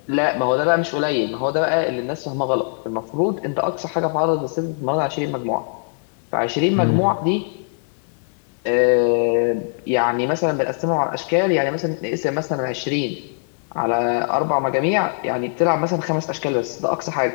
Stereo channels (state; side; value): silent; right; 65 dB below the other